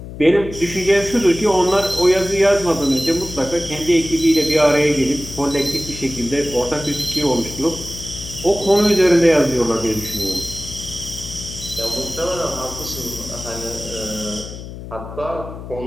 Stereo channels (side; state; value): left; noise; hum, 12 dB below the sound